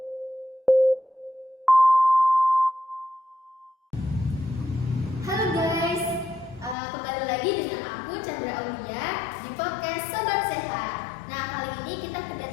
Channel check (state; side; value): drops out; right; at 6.8 s